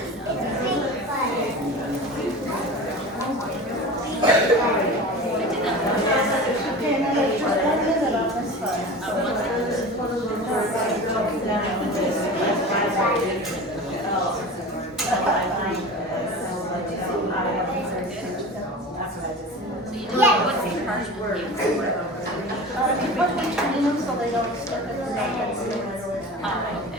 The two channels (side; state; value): both; normal; correlation 0.33